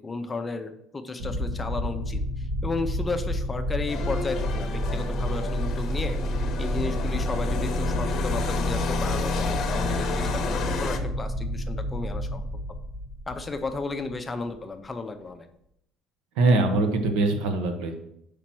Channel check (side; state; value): both; normal; correlation 0.65